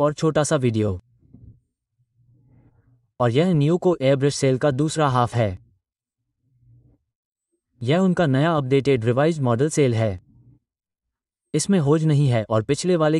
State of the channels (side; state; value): both; identical; correlation 1.00